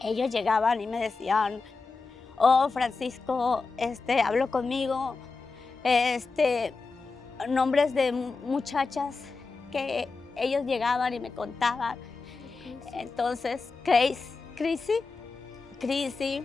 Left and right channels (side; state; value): right; quieter; 4.2 dB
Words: Ellos llegaban y me decían, oh, Francisco, habló conmigo, nombres de muchachas que ellos llegaban y me contaban. Entonces, Chrissy.